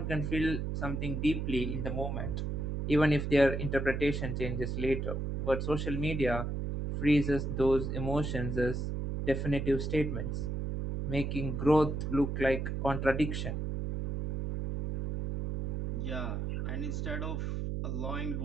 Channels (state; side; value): noise; right; hum, 2 dB below the sound